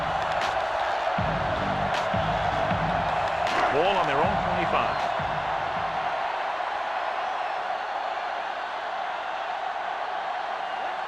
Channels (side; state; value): both; identical; correlation 1.00